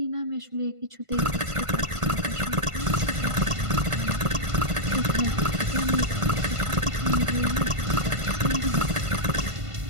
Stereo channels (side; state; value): left; late; 1.5 ms